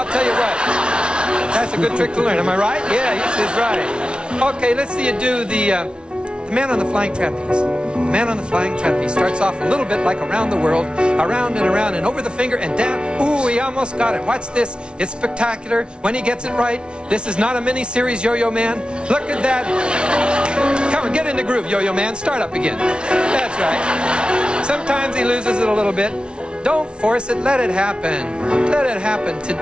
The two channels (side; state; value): left; late; 0.057 ms